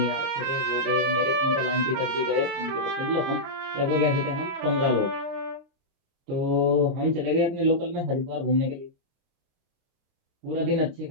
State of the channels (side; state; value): left; late; 30 ms